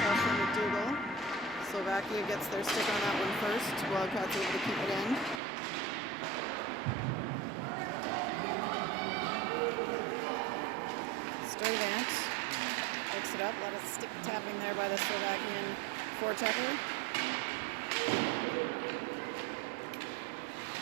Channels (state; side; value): drops out; left; at 5.4 s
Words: from McDougall. Slovakia gets their stick on that one first. Wildcats able to keep it in. up. A lot of stick tapping there by the Slovakian forechecker.